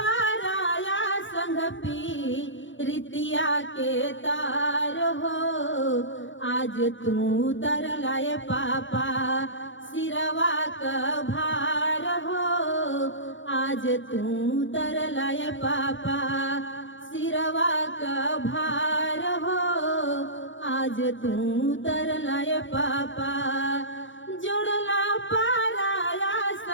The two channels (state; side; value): late; right; 0.56 ms